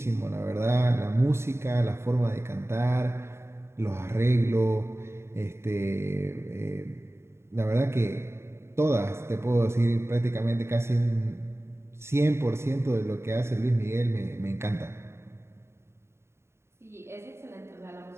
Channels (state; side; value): late; left; 0.13 ms